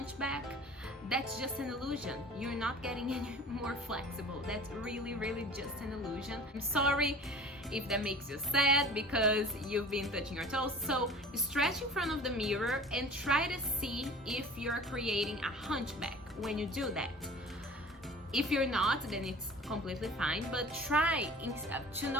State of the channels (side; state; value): both; normal; correlation 0.43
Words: That's just an illusion. You're not getting any more flexible. That's really, really just an illusion. I'm sorry if that makes you sad because you've been touching your toes. So stretch in front of the mirror and try to see if you're creating a hunchback when you do that. If you're not, then it's completely fine, but try to